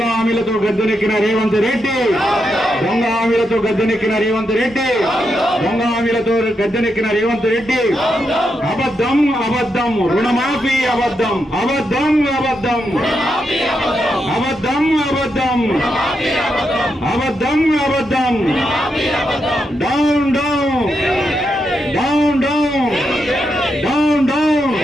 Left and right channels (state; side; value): normal; both; correlation 0.83